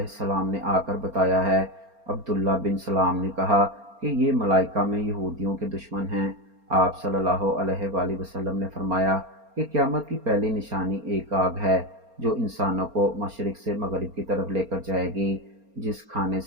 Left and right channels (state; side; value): late; left; 4.3 ms